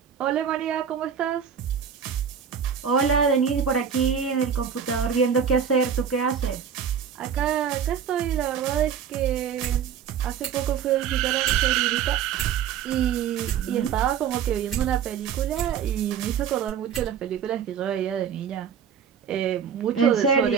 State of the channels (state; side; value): quieter; left; 7.7 dB